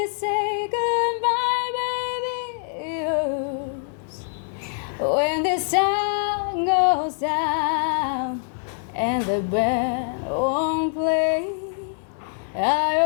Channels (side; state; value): right; silent; 59 dB below the other